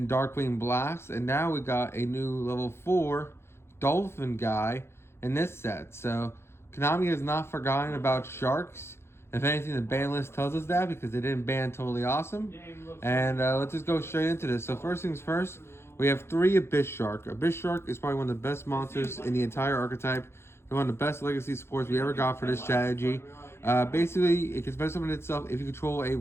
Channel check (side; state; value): right; late; 0.12 ms